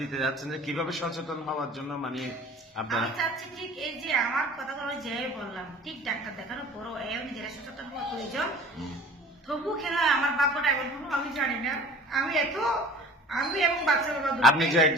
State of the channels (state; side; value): normal; both; correlation 0.45